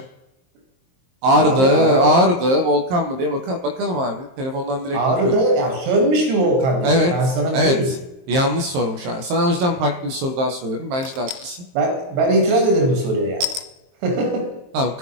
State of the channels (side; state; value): left; late; 23 ms